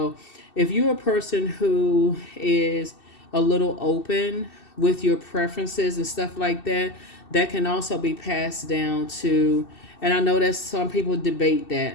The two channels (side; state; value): right; late; 2.7 ms